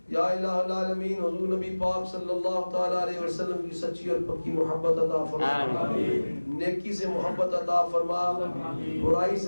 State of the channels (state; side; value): inverted; both; correlation -1.00